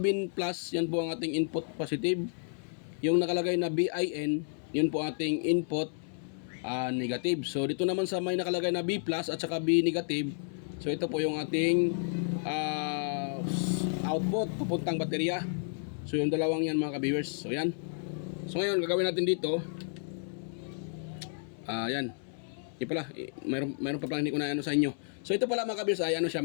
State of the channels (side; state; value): right; silent; 57 dB below the other